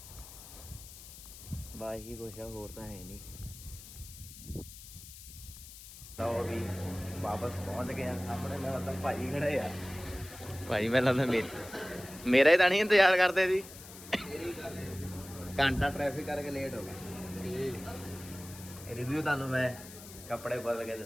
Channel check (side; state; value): left; noise; hiss, 16 dB below the sound